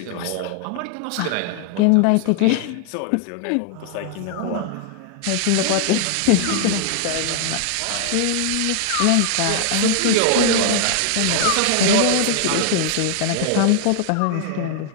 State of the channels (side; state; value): both; different; correlation 0.00